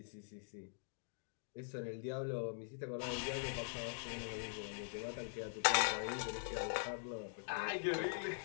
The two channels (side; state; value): right; silent; digital silence